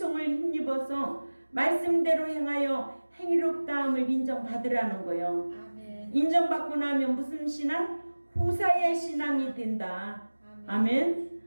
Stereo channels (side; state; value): both; inverted; correlation -1.00